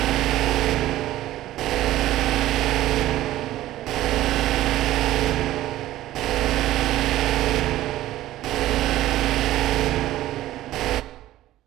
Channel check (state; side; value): quieter; left; 14.8 dB